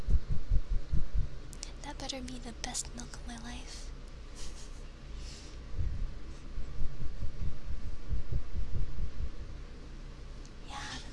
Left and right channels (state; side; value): identical; both; correlation 1.00